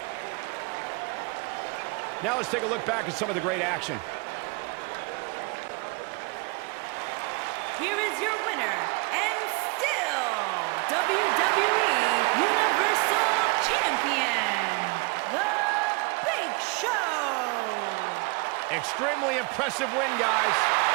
Now let's take a look back at some of the great action. Here is your winner, and still WWE Universal Champion, The Big Show. Extremely impressive win, guys.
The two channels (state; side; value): quieter; left; 29.2 dB